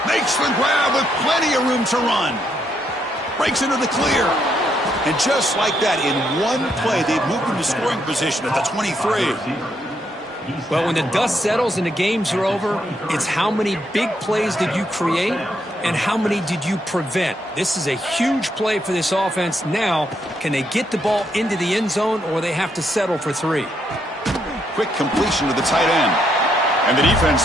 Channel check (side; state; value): both; normal; correlation 0.76